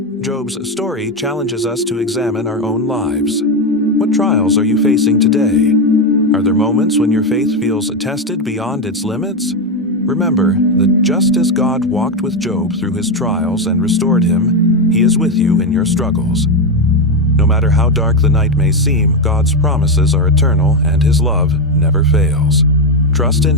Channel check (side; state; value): both; normal; correlation 0.09